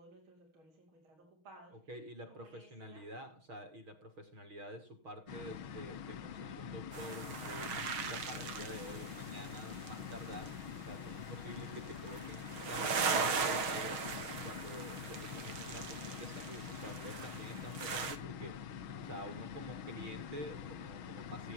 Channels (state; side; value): late; left; 6.5 ms